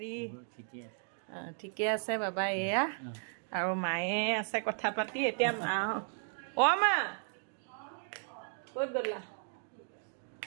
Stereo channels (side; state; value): left; silent; 54 dB below the other